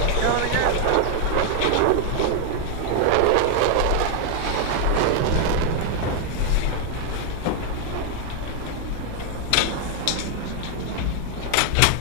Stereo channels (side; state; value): both; different; correlation 0.00